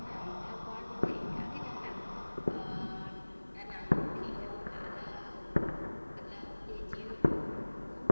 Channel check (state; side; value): inverted; both; correlation -1.00